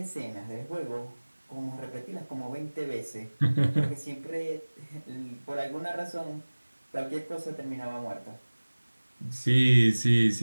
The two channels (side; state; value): both; inverted; correlation -1.00